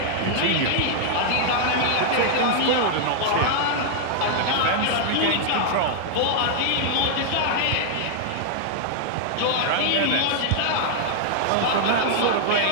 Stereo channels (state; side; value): different; both; correlation -0.01